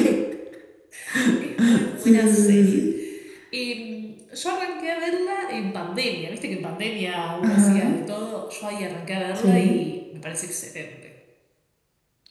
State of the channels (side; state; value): both; identical; correlation 1.00